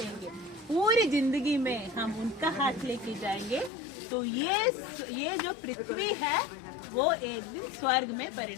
पूरी जिंदगी में हम उनका हाथ लेके जाएंगे तो ये जो पृथ्वी है वो एक दिन स्वर्ग में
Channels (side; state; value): right; drops out; at 3.7 s